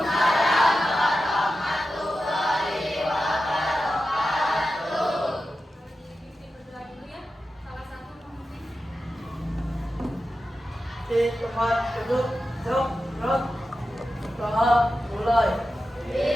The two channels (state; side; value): normal; both; correlation 0.92